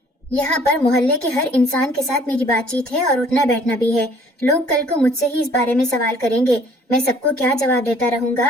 یہاں پر محلے کے ہر انسان کے ساتھ میری بات چیت ہے اور اٹھنا بیٹھنا بھی ہے۔ لوگ کل کو مجھ سے ہی اس بارے میں سوال کریں گے۔ میں سب کو کیا جواب دیتا رہوں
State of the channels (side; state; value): both; normal; correlation 0.57